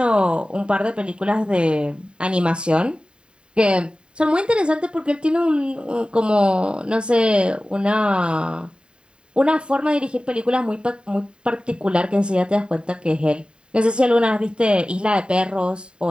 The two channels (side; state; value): left; late; 0.051 ms